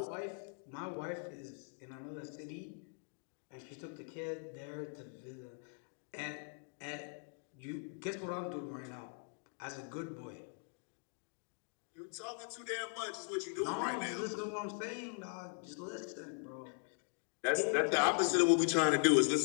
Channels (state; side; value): silent; right; 51 dB below the other